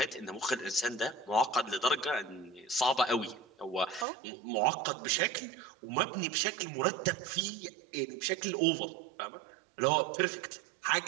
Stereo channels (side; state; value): left; drops out; at 4.0 s